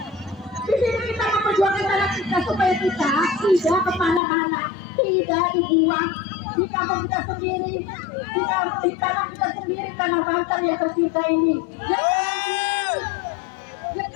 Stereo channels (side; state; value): right; drops out; at 4.2 s